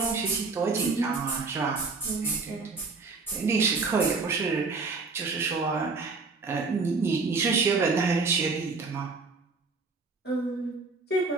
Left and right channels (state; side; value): quieter; left; 4.2 dB